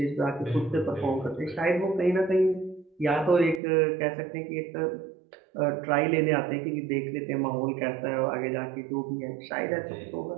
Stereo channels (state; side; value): drops out; left; at 3.6 s